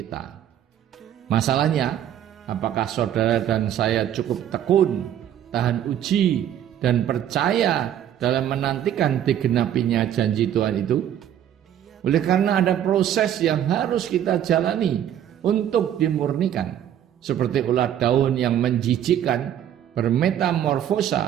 Masalahnya, apakah saudara dan saya cukup tekun, tahan uji, dan percaya dalam menantikan digenapinya janji Tuhan itu? Oleh karena ada proses yang harus kita jalani untuk dimurnikan, seperti ulat daun yang menjijikkan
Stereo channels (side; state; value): left; quieter; 10.5 dB